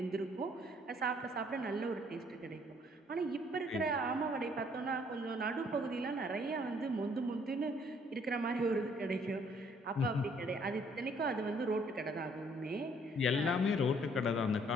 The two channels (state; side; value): normal; both; correlation 0.63